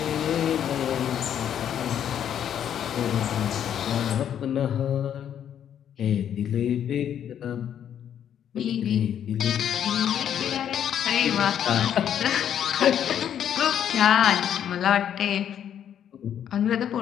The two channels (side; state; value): right; quieter; 9.5 dB